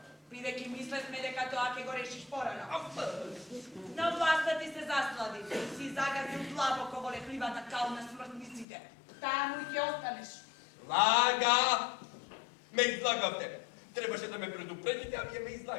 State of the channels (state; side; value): drops out; right; at 8.7 s